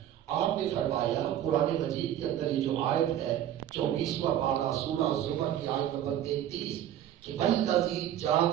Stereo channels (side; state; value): left; quieter; 11.3 dB